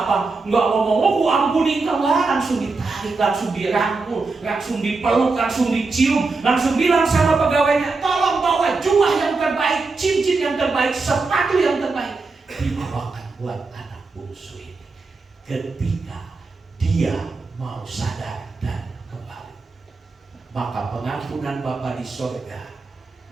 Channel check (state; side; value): quieter; left; 3.9 dB